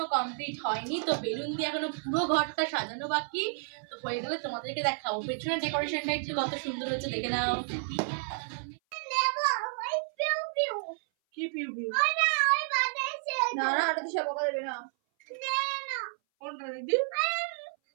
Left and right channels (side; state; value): left; silent; 57 dB below the other